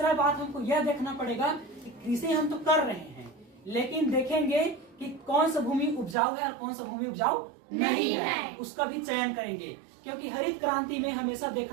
बात हमको यह देखना पड़ेगा कि कृषि हम तो कर रहे हैं, लेकिन देखेंगे कि कौन सा भूमि उपजाऊ है और कौन सा भूमि उपजाऊ नहीं है, उसका भी चयन करेंगे। क्योंकि हरित क्रांति में हमेशा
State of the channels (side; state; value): left; drops out; at 6.2 s